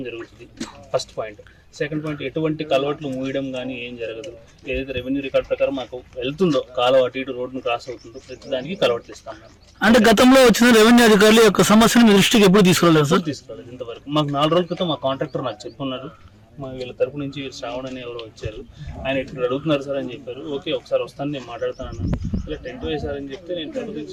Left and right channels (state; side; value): identical; both; correlation 1.00